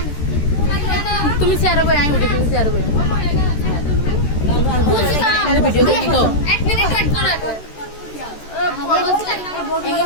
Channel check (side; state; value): right; late; 13 ms